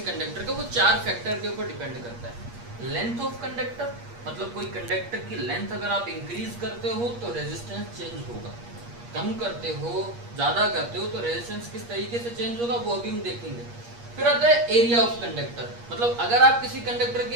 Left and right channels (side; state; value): left; late; 8.5 ms